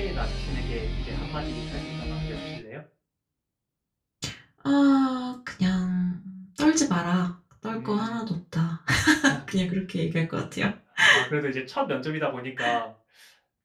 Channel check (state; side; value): identical; both; correlation 1.00